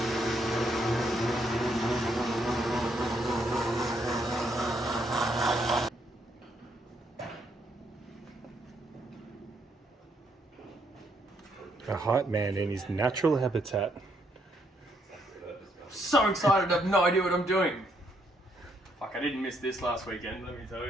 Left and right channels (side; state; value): both; normal; correlation 0.73